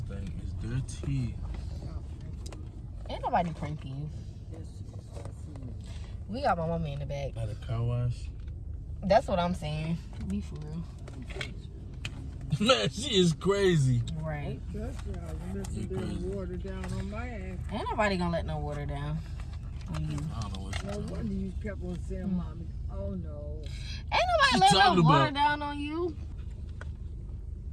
thing is dirty. Ain't nobody pranking you. We got my mama in the back. At a car wash. That's what I'm saying. Be for real. Man, she is crazy. Right. Water down on my ass. Ain't nobody gonna let no water down on you. I don't know what No wonder you kept on saying, Mommy, oh no. Ain't nobody letting no water down on you.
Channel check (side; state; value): both; identical; correlation 1.00